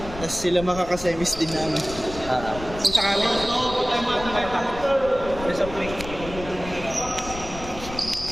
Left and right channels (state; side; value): noise; left; rumble, 12 dB below the sound